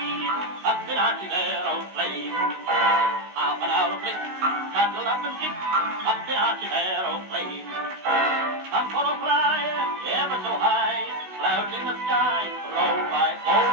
up in Archie's aeroplane. Half an hour flick, cuddle up and kick up in Archie's aeroplane. Come for a fly, ever so high, clouds in the sky, roll by, oh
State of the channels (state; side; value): late; left; 16 ms